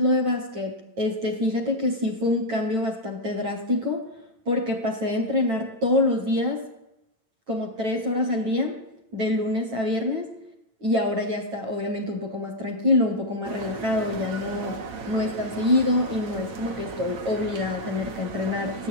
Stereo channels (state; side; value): late; left; 9.0 ms